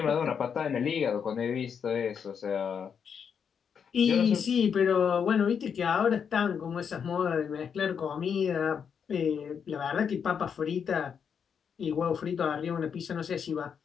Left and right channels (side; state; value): right; quieter; 7.1 dB